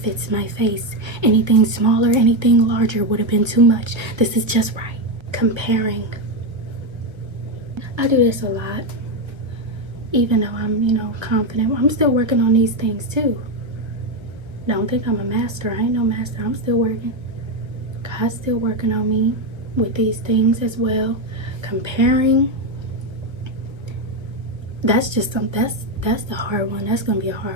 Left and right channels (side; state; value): left; late; 1.5 ms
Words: my face. Anything smaller, anything larger would have been too much. This is just right. Comparing. I do this a lot. Even though I'm, confident. I'm still working on these things too. Don't think I'm a master. I ain't no master. I'm still working. God's still working on me with these things as well. Comparing. That's just something. That's the hard one. That's gonna be a